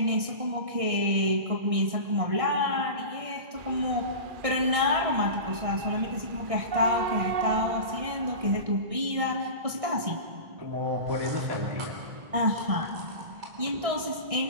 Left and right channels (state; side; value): late; left; 1.6 ms